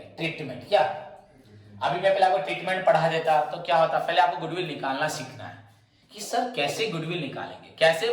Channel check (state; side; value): identical; both; correlation 1.00